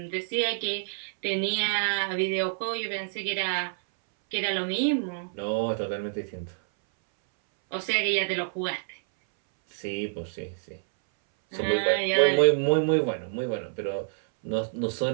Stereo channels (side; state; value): left; silent; 60 dB below the other